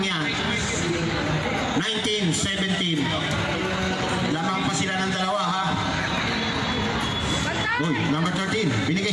19-17. Lamang pa sila ng dalawa ha. Number 13 binigay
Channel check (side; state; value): both; identical; correlation 1.00